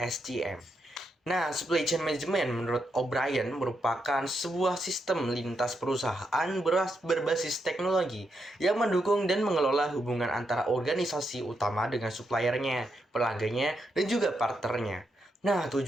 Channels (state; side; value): normal; both; correlation 0.82